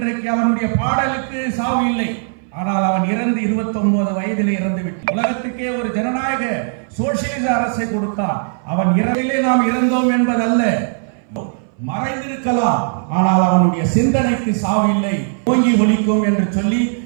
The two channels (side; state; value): left; silent; 62 dB below the other